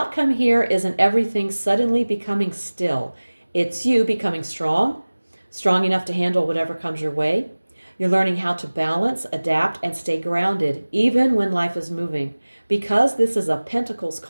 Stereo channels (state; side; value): inverted; both; correlation -1.00